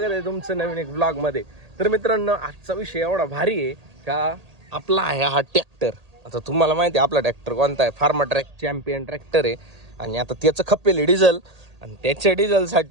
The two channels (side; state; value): left; late; 1.8 ms